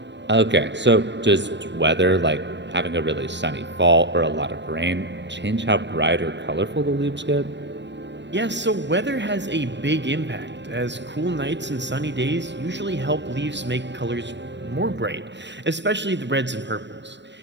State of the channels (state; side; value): late; left; 0.52 ms